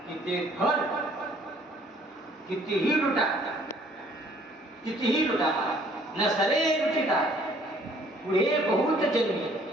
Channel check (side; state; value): both; normal; correlation 0.59